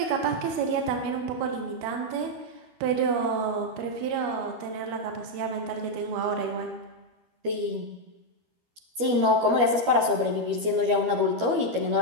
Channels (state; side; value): late; left; 12 ms